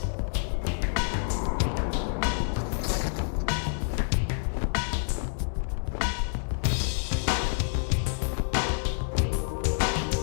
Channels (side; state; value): right; silent; digital silence